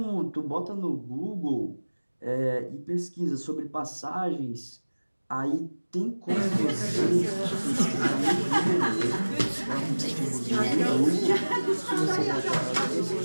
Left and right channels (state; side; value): inverted; both; correlation -1.00